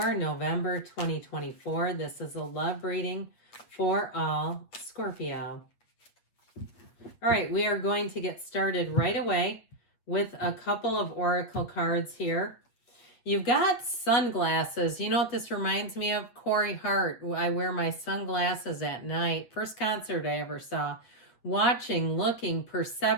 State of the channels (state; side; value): late; right; 8.2 ms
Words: November 2024. This is a love reading for all Scorpio. All right, we are going to get started right away with a couple of Oracle cards here. You've got sunglasses. You know what this reminds me of? Corey Hart. I wear my sunglasses at night. First concert I ever saw. Watching, looking,